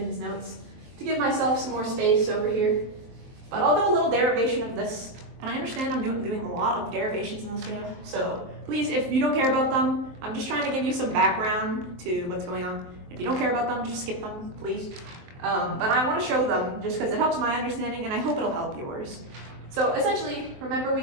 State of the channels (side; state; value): left; late; 23 ms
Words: notes to give myself some more space over here. But I'll do a little derivation of this, and I understand I'm doing a lot of derivations in this video, so please, if you don't care about them, I'm just trying to give you some background to what's going on. If you don't care about them, just skip them, please. But I want to show them just because it helps my understanding, and I hope it'll help yours. So essentially, remember